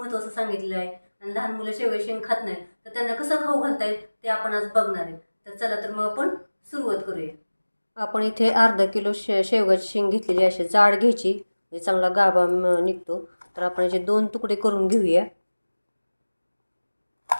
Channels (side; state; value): both; inverted; correlation -1.00